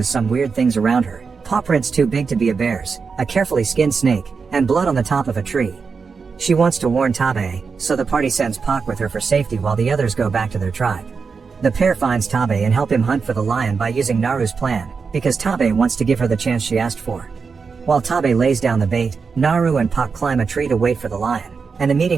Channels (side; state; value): left; quieter; 5.2 dB